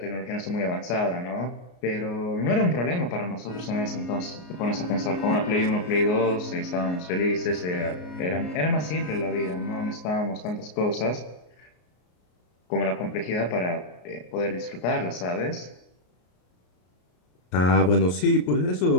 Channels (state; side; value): late; right; 33 ms